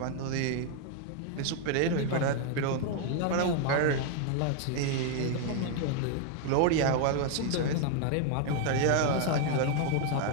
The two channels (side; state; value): both; different; correlation 0.00